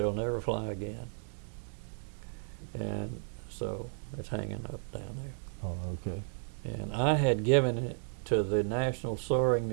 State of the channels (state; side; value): silent; left; digital silence